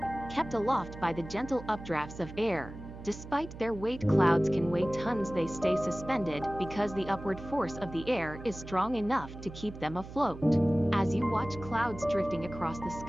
kept aloft by the gentle updrafts of air. Despite their weight, clouds can weigh tons. They stay suspended because the upward force of the air is strong enough to keep them afloat. As you watch clouds drifting across the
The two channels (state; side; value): noise; right; hum, 13 dB below the sound